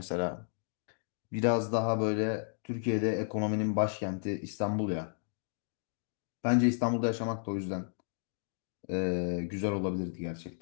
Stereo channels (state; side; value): silent; right; digital silence